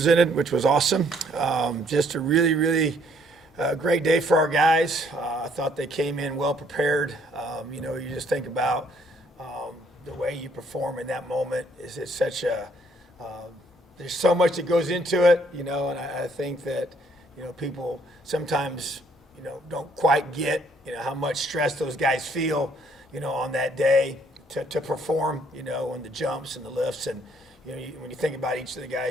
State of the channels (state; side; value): normal; both; correlation 0.65